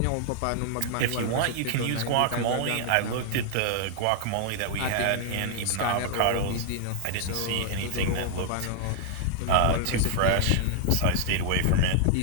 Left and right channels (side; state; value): both; different; correlation 0.00